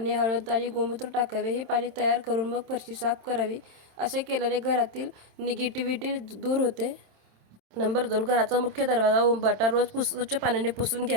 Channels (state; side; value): late; left; 27 ms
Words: हळद आणि गोमूत्र टाकावे. हे पाणी तयार करून मग फरशी साफ करावी. असे केल्याने घरातील निगेटिव्हिटी दूर होते. नंबर 2, घराचा मुख्य दरवाजा उंबाटा रोज स्वच्छ पाण्याने पुसून